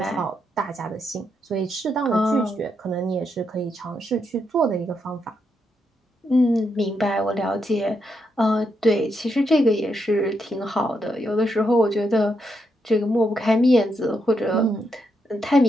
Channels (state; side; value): normal; both; correlation 0.81